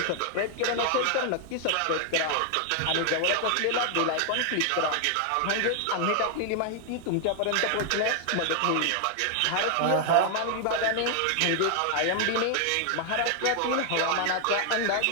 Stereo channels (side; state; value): both; different; correlation 0.00